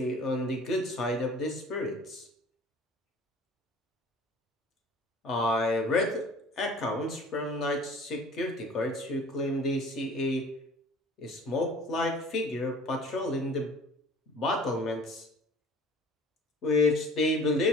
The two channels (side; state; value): both; normal; correlation 0.47